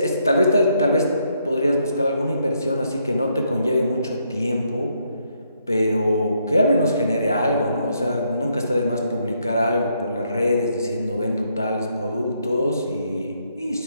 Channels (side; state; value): both; inverted; correlation -0.74